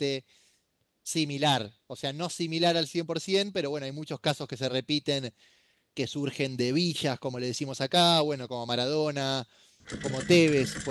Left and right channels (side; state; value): both; identical; correlation 1.00